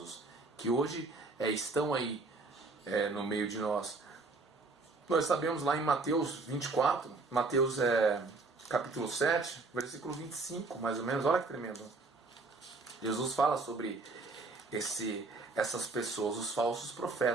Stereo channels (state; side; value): quieter; left; 3.6 dB